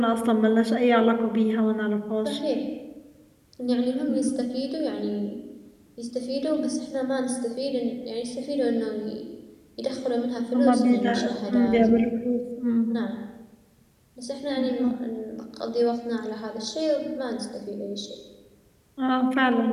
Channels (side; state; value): both; identical; correlation 1.00